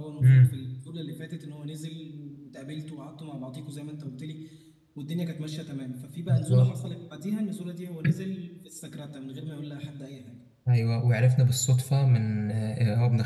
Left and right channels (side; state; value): both; identical; correlation 1.00